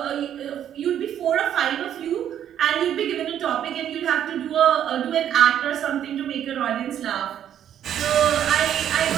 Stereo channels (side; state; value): left; quieter; 10.1 dB